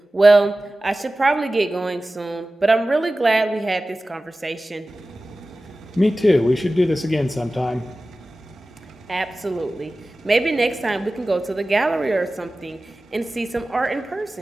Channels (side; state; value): both; normal; correlation 0.96